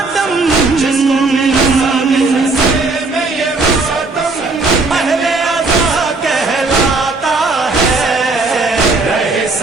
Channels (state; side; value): quieter; left; 3.6 dB